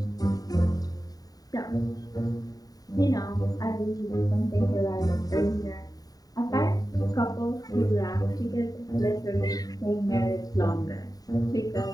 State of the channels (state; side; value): late; right; 0.18 ms